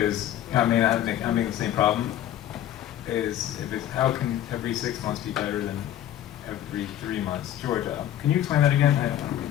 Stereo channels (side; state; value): right; quieter; 11.9 dB